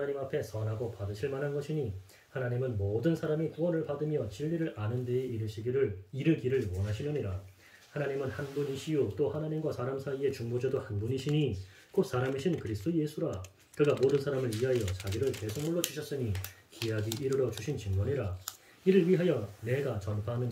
앞에 선하고 받으실 만한 것이니, 하나님은 모든 사람이 구원을 받으며 진리를 아는 데에 이르기를 원하시느니라. 하나님은 한 분이시요 또 하나님과 사람 사이의 중보자도 한 분이시니 곧 사람이신 그리스도 예수라. 그가 모든 사람을 위하여 자기를 대속물로 주셨으니 기약이 이르러 주신 증거니라. 이를 위하여 내가 전파하는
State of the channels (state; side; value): identical; both; correlation 1.00